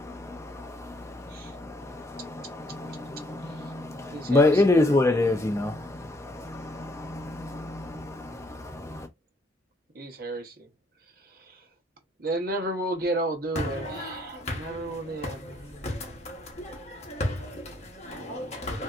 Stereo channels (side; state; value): both; normal; correlation 0.67